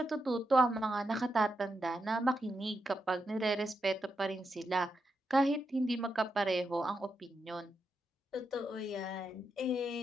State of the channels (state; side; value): normal; both; correlation 0.85